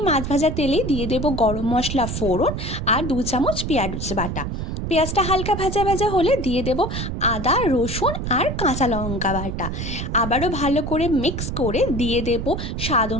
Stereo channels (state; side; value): noise; right; rumble, 4 dB below the sound